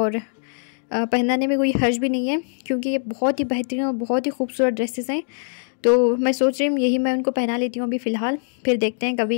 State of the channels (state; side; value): silent; right; digital silence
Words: पहनाने में कोई हर्ज भी नहीं है, क्योंकि ये बहुत ही बेहतरीन और बहुत ही खूबसूरत ड्रेसेस हैं। तो मैं सोच रही हूँ यही मैं उनको पहना लेती हूँ अभी फ़िलहाल। फिर देखते हैं